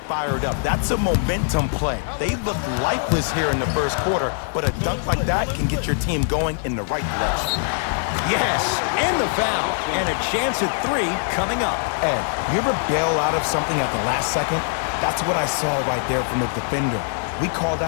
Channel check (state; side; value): silent; right; 64 dB below the other